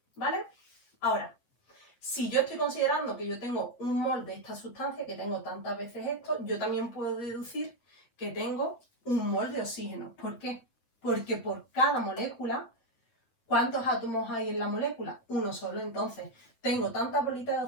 ¿Vale? Ahora, si yo estoy considerando que yo tengo un mol de esta sustancia, que tengo tantas veces esto, yo también puedo deducir que tengo un mol de oxígeno. ¿Por qué? Porque por cada molécula, ¿cuántos átomos hay en la molécula? Uno solo. Entonces, tengo tantas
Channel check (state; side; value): late; right; 8.3 ms